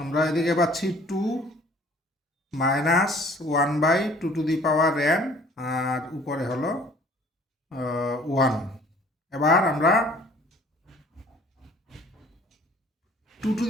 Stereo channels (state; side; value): normal; both; correlation 0.53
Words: এদিকে পাচ্ছি 2 মাইনাস 1/2n আর উপরে হলো 1। এবার আমরা